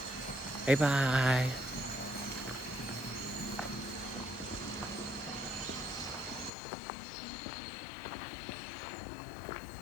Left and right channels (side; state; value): right; drops out; at 6.5 s